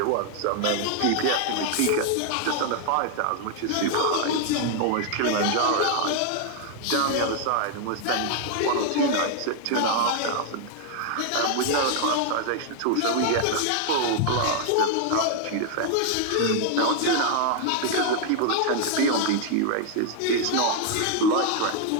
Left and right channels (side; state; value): both; different; correlation 0.00